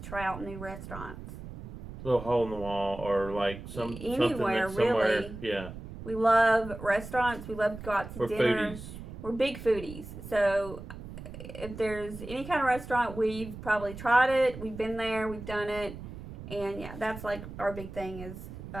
try out new restaurants. Little hole in the wall or like Anywhere, something that's somewhere. really. Yeah. We love restaurants. We love to go out to We're dinner. foodies. We're big foodies. So if there's any kind of restaurant, we've probably tried it. We've been there. We've done it. And yeah, that's like our big thing is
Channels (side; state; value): right; noise; rumble, 12 dB below the sound